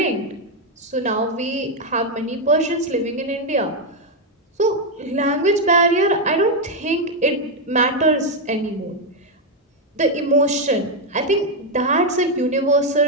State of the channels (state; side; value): normal; both; correlation 0.03